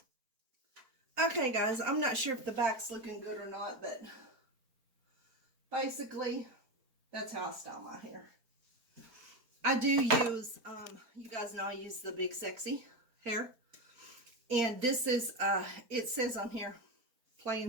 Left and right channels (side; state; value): left; late; 4.4 ms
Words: Okay, guys, I'm not sure if the back's looking good or not, but basically, that's how I style my hair. I do use, you guys know I use the Big Sexy hair. And this is, it says on here, play